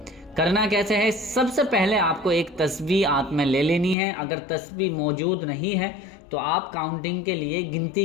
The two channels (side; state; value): right; drops out; at 4.0 s